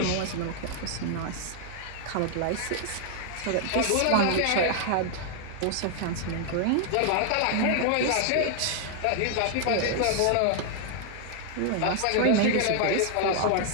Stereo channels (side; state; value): both; different; correlation 0.00